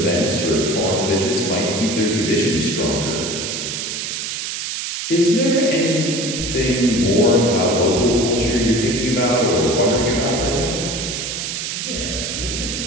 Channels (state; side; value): noise; right; hiss, 4 dB below the sound